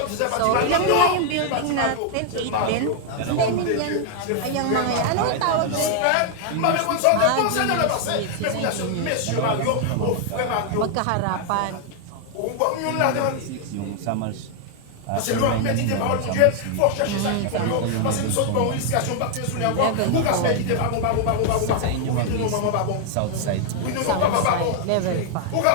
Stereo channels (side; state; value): both; different; correlation 0.00